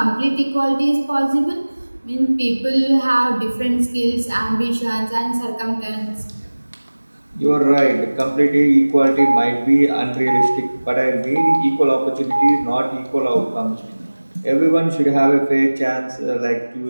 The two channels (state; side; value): inverted; both; correlation -1.00